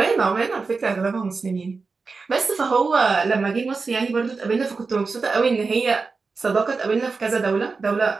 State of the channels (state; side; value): quieter; left; 4.4 dB